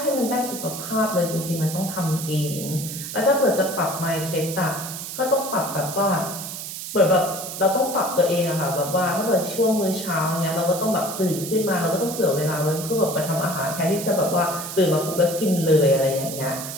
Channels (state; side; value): noise; right; hiss, 8 dB below the sound